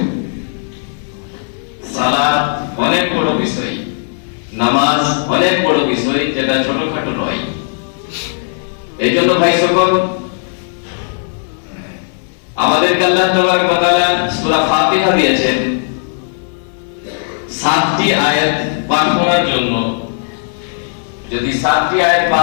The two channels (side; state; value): right; silent; digital silence